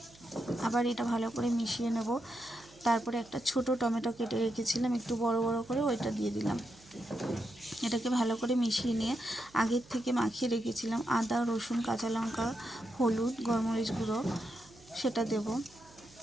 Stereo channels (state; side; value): noise; right; hum, 25 dB below the sound